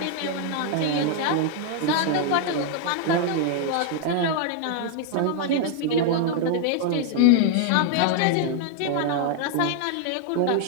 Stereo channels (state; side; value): different; both; correlation 0.00